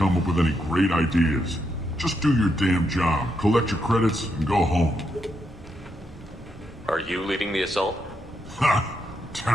up with any great ideas. Just do your damn job, collect your credits, and go home. Are you leading the assault? Ha!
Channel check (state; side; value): normal; both; correlation 0.81